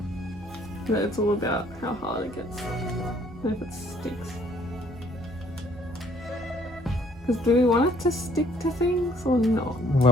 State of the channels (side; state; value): right; noise; hum, 20 dB below the sound